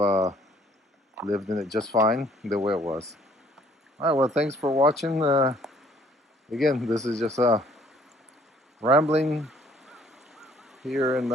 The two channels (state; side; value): normal; both; correlation 0.60